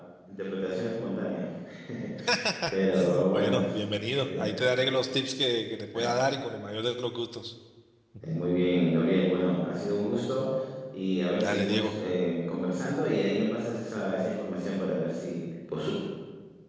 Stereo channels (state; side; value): identical; both; correlation 1.00